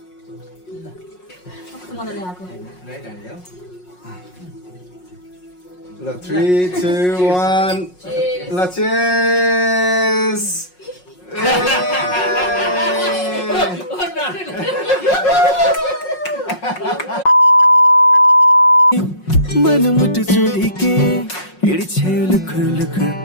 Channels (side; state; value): right; late; 5.5 ms